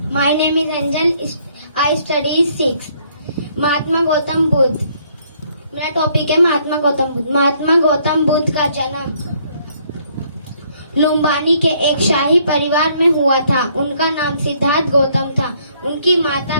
My name is Anjal. I study 6. Mahatma Gautam Buddha. मेरा टॉपिक है महात्मा गौतम बुद्ध। महात्मा गौतम बुद्ध का जन्म लुम्बानी के एक शाही परिवार में हुआ था। उनका नाम सिद्धार्थ गौतम था। उनकी माता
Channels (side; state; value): both; inverted; correlation -0.66